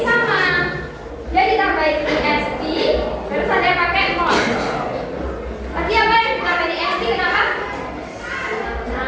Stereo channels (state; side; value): identical; both; correlation 1.00